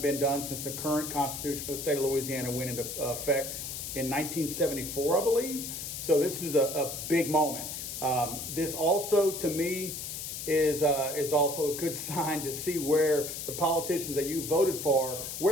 done since the current constitution for the state of Louisiana went into effect in 1974, I believe. So this is a big moment. This also, to me, is also a good sign to see where the politicians that you voted for,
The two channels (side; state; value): left; noise; hiss, 6 dB below the sound